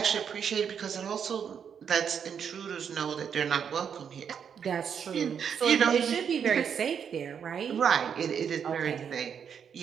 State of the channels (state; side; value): quieter; left; 7.5 dB